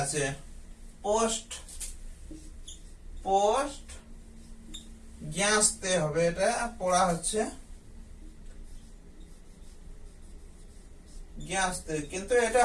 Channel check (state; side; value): identical; both; correlation 1.00